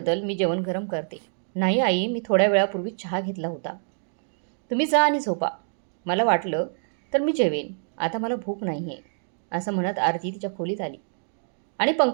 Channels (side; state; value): left; silent; digital silence